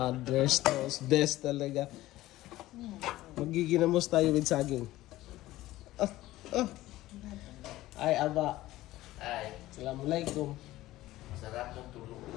toast. Best talaga. Magiginamos tayo with saging. Ay, aba. Ay. Assalamualaikum. Sarap ng tulog.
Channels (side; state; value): right; quieter; 16.4 dB